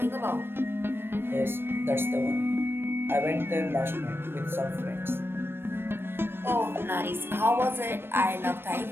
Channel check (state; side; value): late; left; 0.11 ms